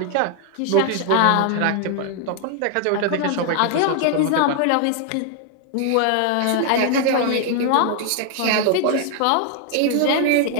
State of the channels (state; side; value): different; both; correlation 0.00